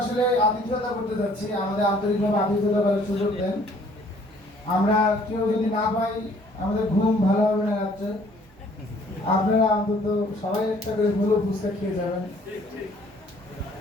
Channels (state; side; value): normal; both; correlation 0.58